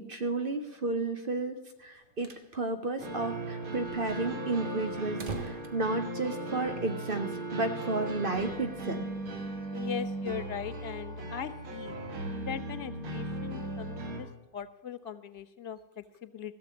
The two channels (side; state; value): left; late; 2.5 ms